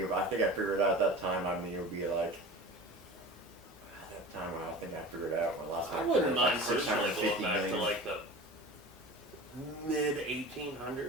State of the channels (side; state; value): both; normal; correlation 0.36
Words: I think I figured out at that time. I mean, it would be like. At that time, I think I figured out when last time. I wouldn't mind like personally going 650 back to million. like the mid